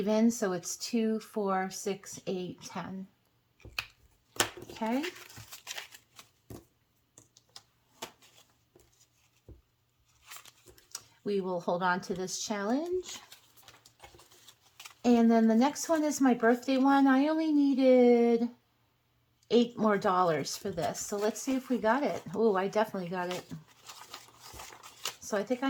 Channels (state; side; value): identical; both; correlation 1.00